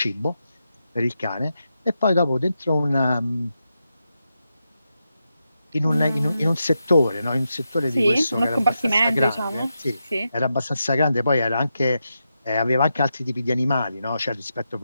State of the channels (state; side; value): inverted; both; correlation -0.87